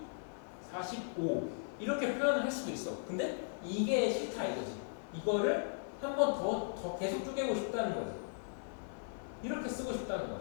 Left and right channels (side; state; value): right; silent; digital silence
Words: 45 이렇게 표현을 할 수도 있어. 근데 이게 싫다 이거지. 이거를 한 번 더 계속 쪼개고 싶다는 거지. 이렇게 쓰고 싶다는 거야.